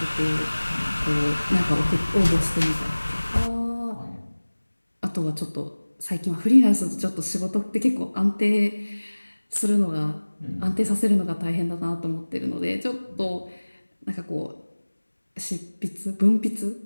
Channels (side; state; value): both; inverted; correlation -1.00